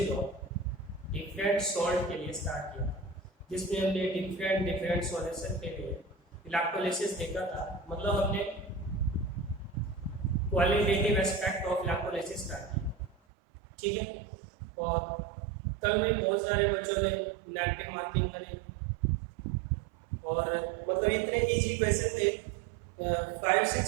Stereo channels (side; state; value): left; drops out; at 13.2 s